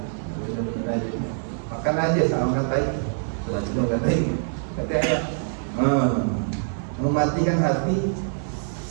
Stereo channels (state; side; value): silent; left; digital silence